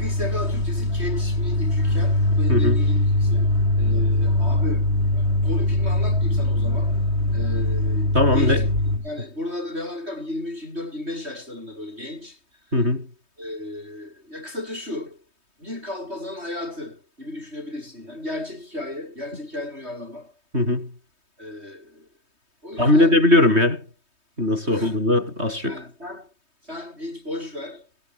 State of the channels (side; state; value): left; late; 3.2 ms